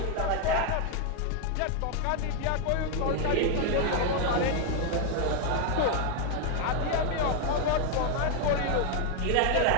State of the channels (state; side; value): different; both; correlation 0.01